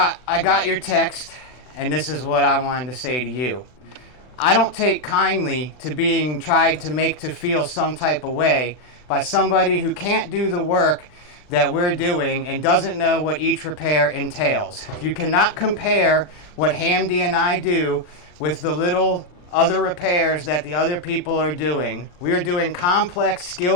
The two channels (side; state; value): right; late; 40 ms